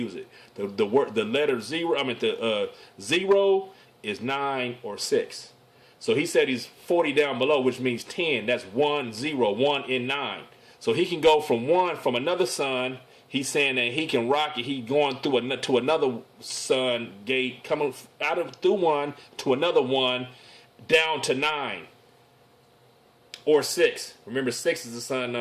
it. The letter 0, the 0 is 9 or 6. So he said he's 40 down below, which means 10. That's 1, 0, 1 in 9. So he can go from another sun. He's saying that he can rock it. He's going through to another sun gate, coming through one to another one, down to 9 or 6. Remember, 6 is the sun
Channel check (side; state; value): both; identical; correlation 1.00